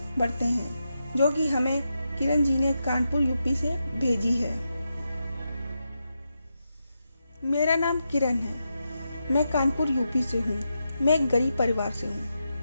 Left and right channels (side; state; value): both; inverted; correlation -0.87